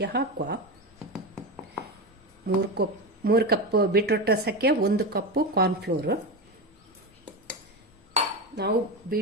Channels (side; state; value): both; normal; correlation 0.19